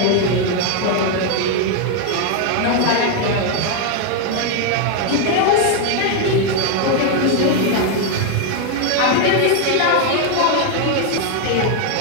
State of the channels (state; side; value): different; both; correlation 0.01